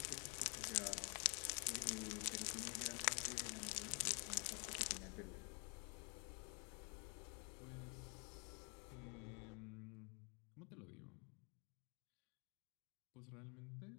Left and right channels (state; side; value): quieter; right; 35.8 dB